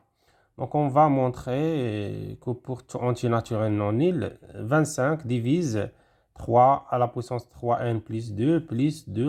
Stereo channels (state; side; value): identical; both; correlation 1.00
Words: Donc on va montrer que pour tout entier naturel non nul, 25 divise 3 à la puissance 3n plus